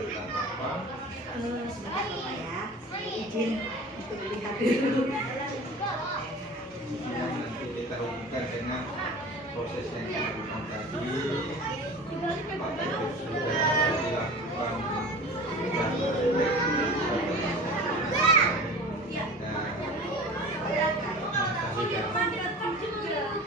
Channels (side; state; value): both; normal; correlation 0.38